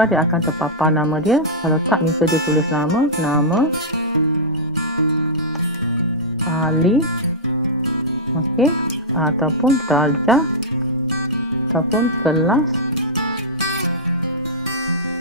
dia akan terpapar nama dia. Kalau tak, minta dia tulis nama Ali, okey, ataupun darjah, ataupun kelas,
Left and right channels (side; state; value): both; normal; correlation -0.10